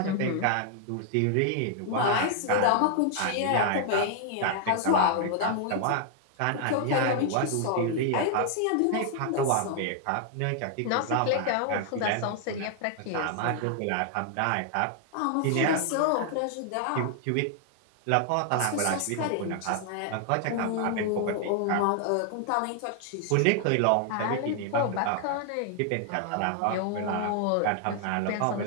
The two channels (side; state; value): both; different; correlation 0.00